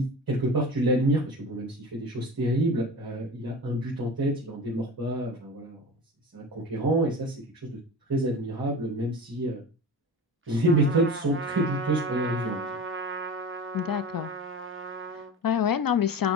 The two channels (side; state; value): both; normal; correlation 0.31